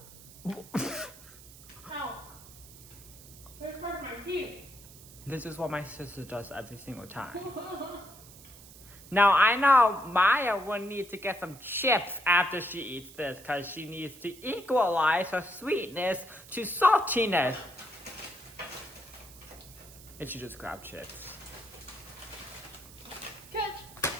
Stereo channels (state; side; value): noise; right; hiss, 19 dB below the sound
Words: Ow. It hurt my feet. This is what my sister does every single time. Now, I know Maya will need to get some chips after she eats this because she needs to equalize her sweetness to saltiness. If she just grab chips. Catch.